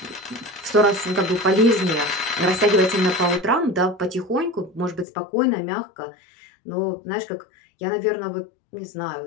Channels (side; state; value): right; drops out; at 5.1 s